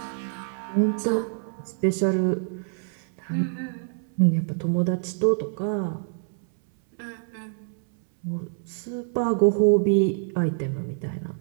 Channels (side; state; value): left; silent; 61 dB below the other